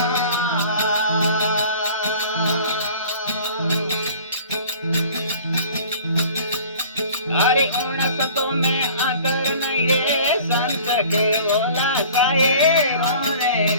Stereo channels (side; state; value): both; inverted; correlation -0.47